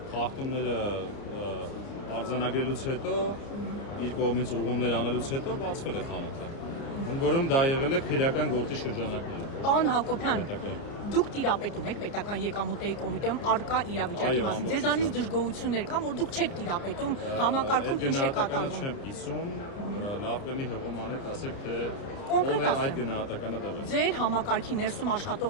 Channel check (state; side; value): late; right; 30 ms